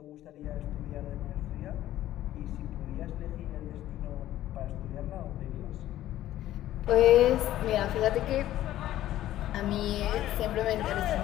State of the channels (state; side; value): quieter; right; 13.6 dB